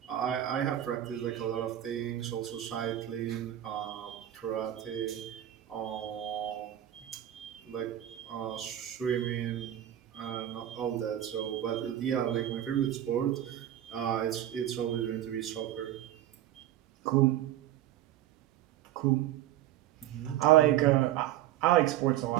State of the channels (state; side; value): quieter; left; 12.5 dB